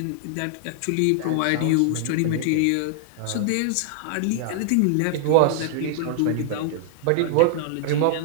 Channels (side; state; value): both; different; correlation 0.00